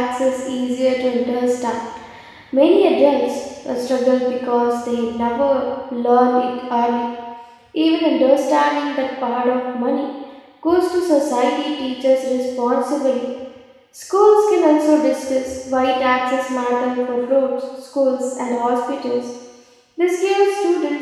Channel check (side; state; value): both; identical; correlation 1.00